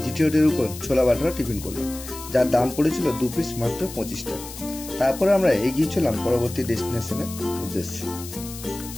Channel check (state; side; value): noise; left; hiss, 13 dB below the sound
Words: জিটি রোডের উপর ছোলা বাটারা টিফিন করলাম, যার দাম পড়েছিল 2 পিস মাত্র 25 টাকা। তারপরে আমরা এগিয়ে চললাম পরবর্তী ডেস্টিনেশনের উদ্দেশ্যে।